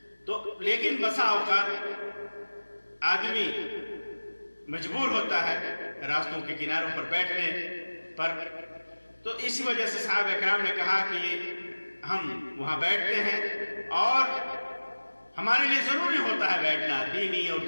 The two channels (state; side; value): inverted; both; correlation -1.00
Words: تو لیکن بسا اوقات آدمی مجبور ہوتا ہے راستوں کے کناروں پر بیٹھنے پر، تو اسی وجہ سے صحابہ کرام نے کہا کہ ہم وہاں بیٹھتے ہیں اور ہمارے لیے ضروری ہوتا ہے بیٹھنا، دینی اور